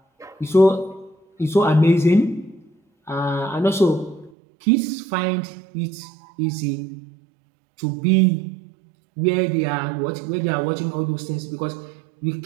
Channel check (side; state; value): left; drops out; at 4.3 s